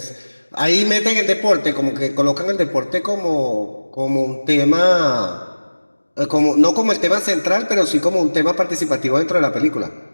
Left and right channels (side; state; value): both; inverted; correlation -1.00